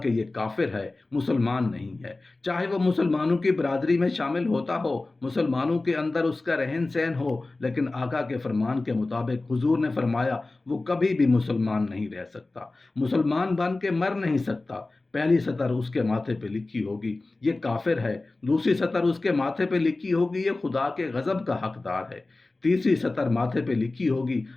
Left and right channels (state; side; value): quieter; right; 3.2 dB